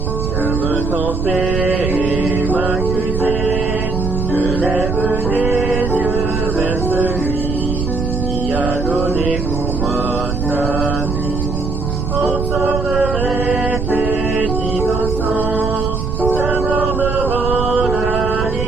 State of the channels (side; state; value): right; noise; rumble, 2 dB below the sound